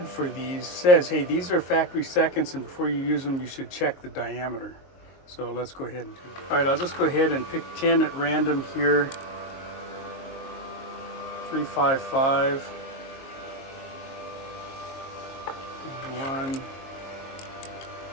for these, says, hey, these are factory seconds, and before you use them, you should check the diameter. So let's go ahead and do that. All right, I'll just go ahead and pick 10 at random here. 355. 1.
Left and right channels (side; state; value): right; late; 22 ms